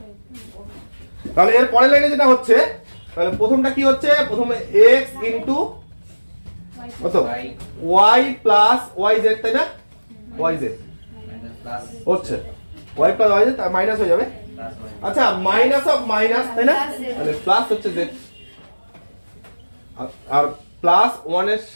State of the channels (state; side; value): inverted; both; correlation -1.00